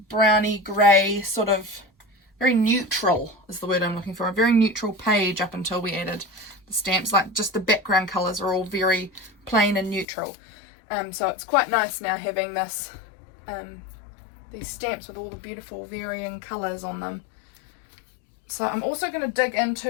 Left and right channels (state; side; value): drops out; right; at 10.1 s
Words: browny grey sort of, very neutral is the word I'm looking for. A very neutral page up until we added the stamps. Like just the background colours are all very plain and neutral. So it's quite nice now having this... these stamps with all the beautiful varying colours on them. So I'm also going to dig